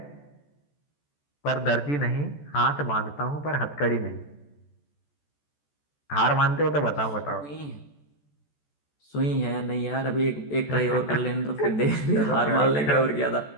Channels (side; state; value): right; late; 14 ms